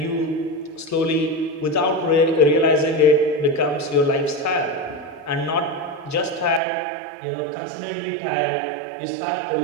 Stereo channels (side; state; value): left; drops out; at 6.6 s